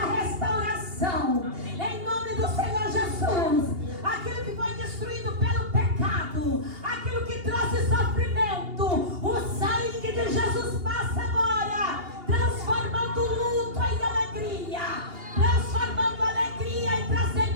restauração em nome do Senhor Jesus. Aquilo que foi destruído pelo pecado, aquilo que trouxe sofrimento, o sangue de Jesus passa agora, transformando o luto em alegria, transformando a alegria e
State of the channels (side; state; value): left; late; 2.8 ms